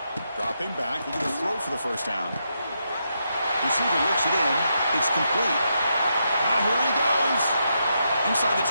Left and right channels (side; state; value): both; inverted; correlation -0.82